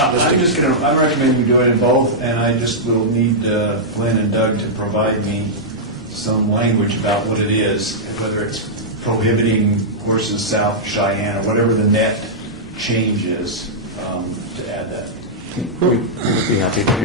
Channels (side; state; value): both; normal; correlation -0.09